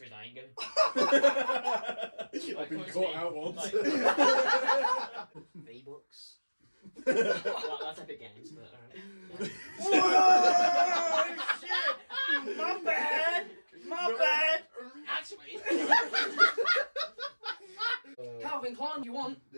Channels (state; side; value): inverted; both; correlation -1.00